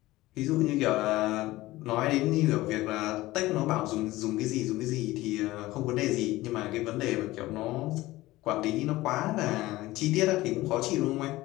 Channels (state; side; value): quieter; right; 18.1 dB